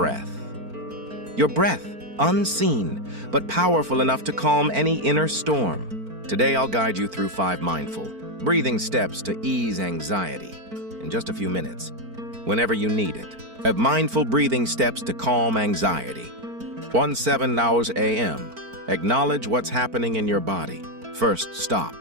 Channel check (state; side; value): late; left; 4.5 ms